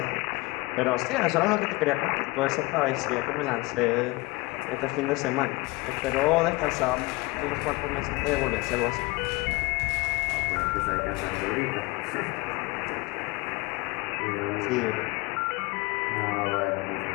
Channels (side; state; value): right; quieter; 23.5 dB